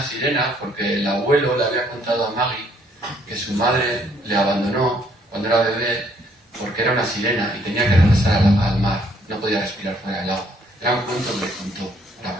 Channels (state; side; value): normal; both; correlation 0.66